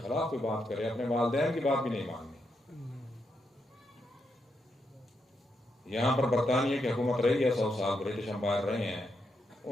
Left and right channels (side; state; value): both; normal; correlation 0.82